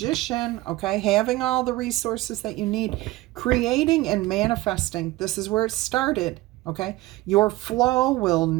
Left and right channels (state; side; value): quieter; left; 18.8 dB